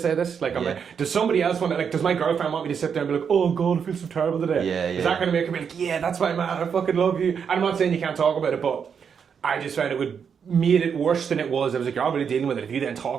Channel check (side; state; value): left; quieter; 6.9 dB